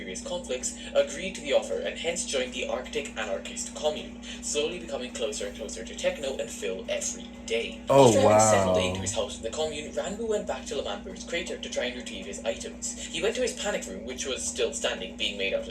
conflicts, agreed to the offer and hence joined the Arctic Anarchist Commune, slowly becoming closer and closer to Techno and Phil every day. After having settled into his house in the commune, Ranboo went back to L'Manberg's crater to try and retrieve his items. He went to his panic room, which was still standing, being made out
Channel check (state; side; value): identical; both; correlation 1.00